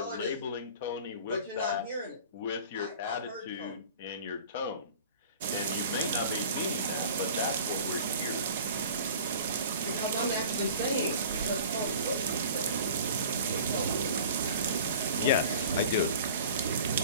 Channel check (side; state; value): both; inverted; correlation -0.42